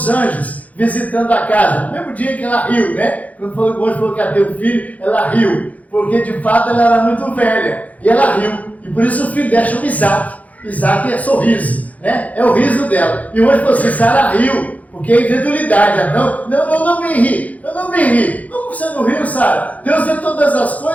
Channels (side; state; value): right; late; 0.073 ms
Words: anjos visitando a casa, no mesmo dia que ela riu, né? Quando o anjo falou que ia ter um filho, ela riu. Porque de fato ela era muito velha. E ela riu. E por isso o filho dela chama Isaac. Isaac é sorriso, né? É o riso dela. E o anjo falou assim: Sara riu. Porque é incredulidade. Não me ri. Eu não me ri. Como você não riu, Sara? Deus vê todas as